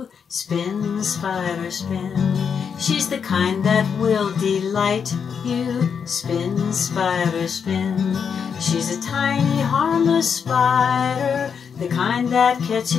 spin, spider, spin. She's the kind that will delight you, spin, spider, spin. She's a tiny harmless spider, the kind that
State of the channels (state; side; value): quieter; right; 6.7 dB